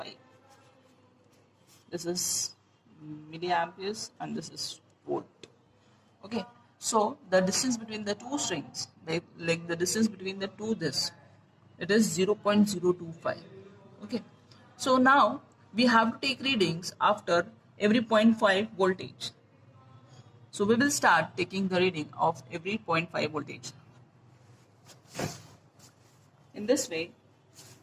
This is milliamperes and this is volt. Okay, so the distance between the two strings, like the distance between the two it is 0.025. Okay, so now we have to take readings after every 0.5 voltage. So we will start taking the reading of every 0.5 voltage. In this way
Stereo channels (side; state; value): both; identical; correlation 1.00